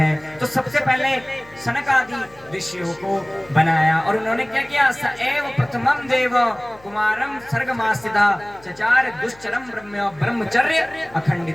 तो सबसे पहले सनक आदि ऋषियों को बनाया, और उन्होंने क्या किया? स एव प्रथमम देव कुमारम सर्गमासिदा चचार दुश्चरम ब्रह्मचर्य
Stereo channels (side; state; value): left; noise; hum, 25 dB below the sound